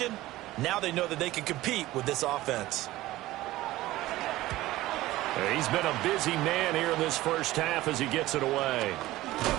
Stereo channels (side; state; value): left; quieter; 16.9 dB